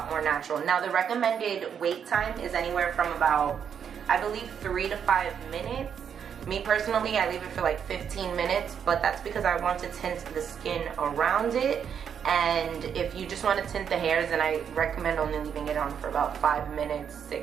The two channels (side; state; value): left; quieter; 7.8 dB